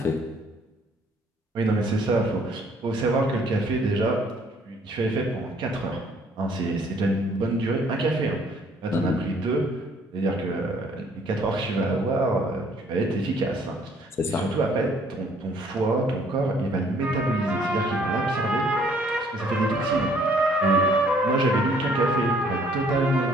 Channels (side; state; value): both; normal; correlation 0.62